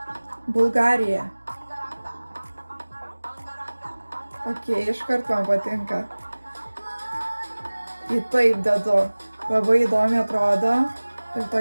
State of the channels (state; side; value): inverted; both; correlation -1.00